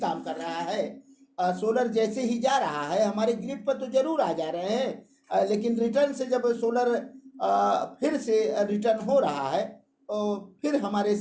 कर रहा है। सोलर जैसे ही जा रहा है हमारे ग्रिड पर तो जरूर आ जा रहे हैं, लेकिन रिटर्न से जब सोलर फिर से रिटर्न हो रहा है तो फिर हमारे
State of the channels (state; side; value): identical; both; correlation 1.00